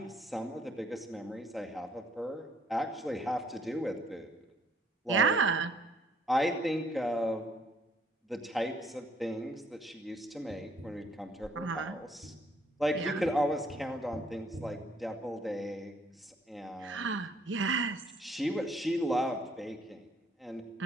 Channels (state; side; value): normal; both; correlation 0.64